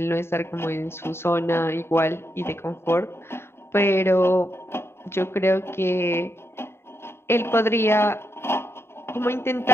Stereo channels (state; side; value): late; right; 0.12 ms